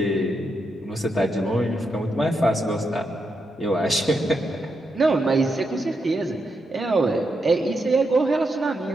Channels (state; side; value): normal; both; correlation 0.84